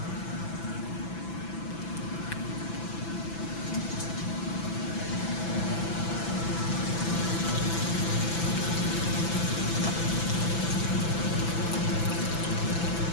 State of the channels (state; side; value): late; right; 6.0 ms